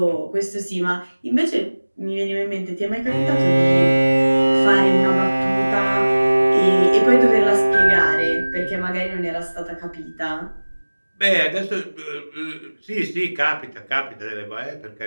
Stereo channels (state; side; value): inverted; both; correlation -1.00